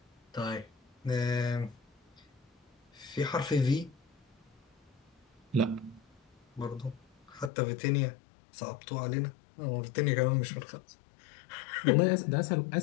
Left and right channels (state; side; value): drops out; right; at 7.5 s